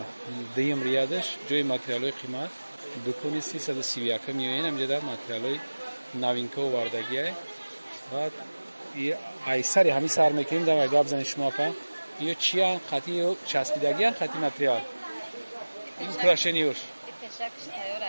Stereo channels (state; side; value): inverted; both; correlation -1.00